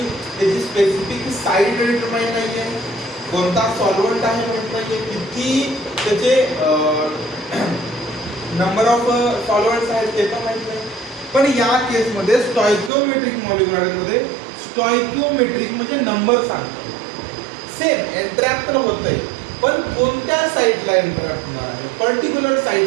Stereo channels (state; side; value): drops out; left; at 12.9 s